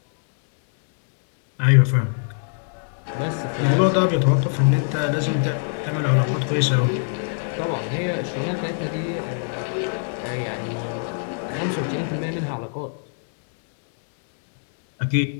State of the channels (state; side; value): silent; right; 63 dB below the other